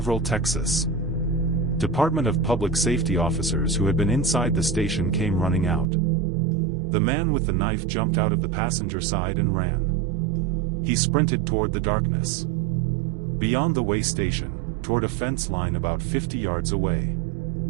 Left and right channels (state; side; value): drops out; left; at 5.9 s